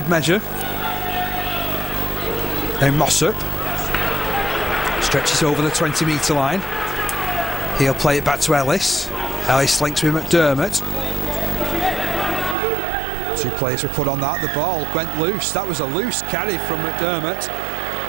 measure. Now Mossop stretches over the 20 metre line. He'll play it back to Ellis. Ellis links with McDermott. 2 players were put on that. The ball went loose. That was a loose carry from McDermott.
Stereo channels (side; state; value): left; drops out; at 12.6 s